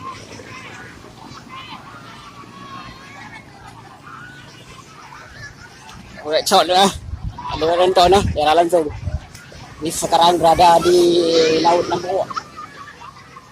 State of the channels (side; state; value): both; identical; correlation 1.00